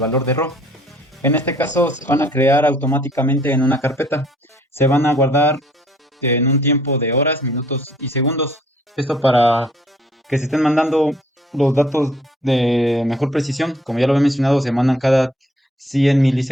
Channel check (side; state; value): both; normal; correlation 0.60